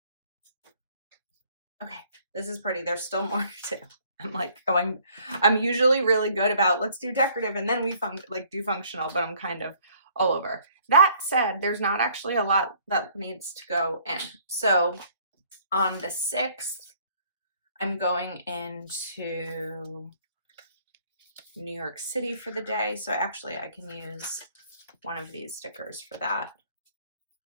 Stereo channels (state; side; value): inverted; both; correlation -0.60